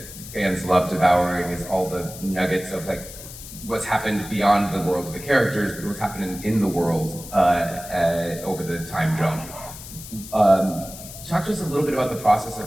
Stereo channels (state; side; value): noise; left; hiss, 14 dB below the sound